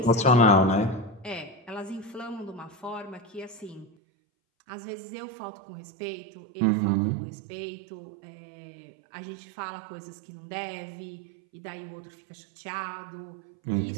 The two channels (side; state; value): left; drops out; at 3.9 s